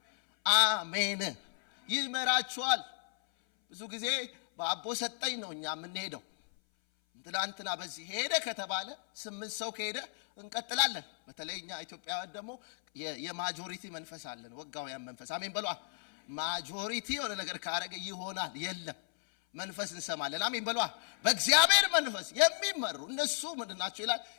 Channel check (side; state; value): right; silent; 55 dB below the other